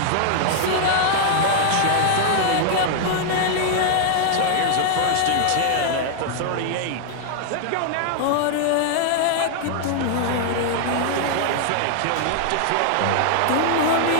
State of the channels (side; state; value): both; different; correlation -0.01